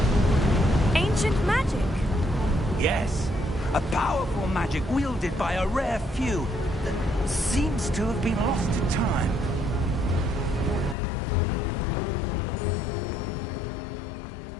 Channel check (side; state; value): right; drops out; at 11.0 s